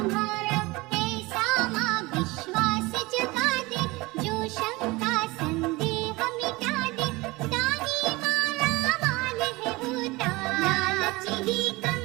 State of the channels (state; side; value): quieter; left; 22.5 dB